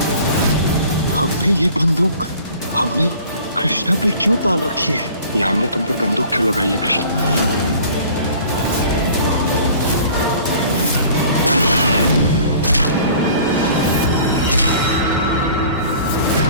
हमने ये बंदूक हमने कृष्णा पे क्यों तान रखी है? ये हमने तुम पर बंदूक क्यों लगाई है कृष्णा?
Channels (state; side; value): inverted; both; correlation -0.48